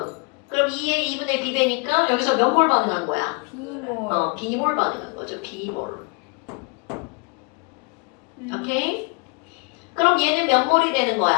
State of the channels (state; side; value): quieter; right; 31.9 dB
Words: 그럼 2의 2분의 B배니까 여기서 몇 몰 반응한 거야? B몰. B몰 반응한 거죠. B몰. 오케이? 그럼 얘는 몇 몰이 되는